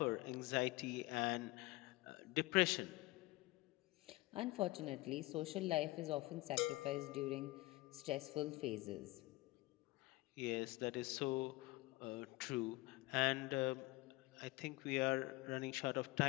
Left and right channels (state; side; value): quieter; right; 20.7 dB